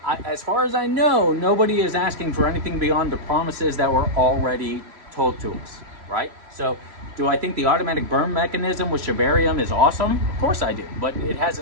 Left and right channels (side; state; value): left; late; 3.0 ms